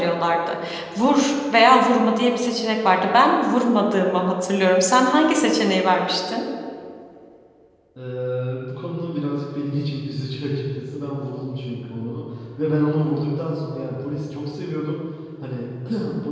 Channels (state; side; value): identical; both; correlation 1.00